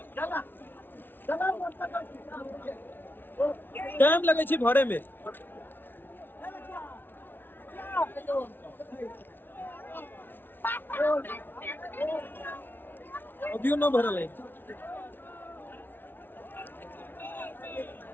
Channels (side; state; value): right; late; 0.099 ms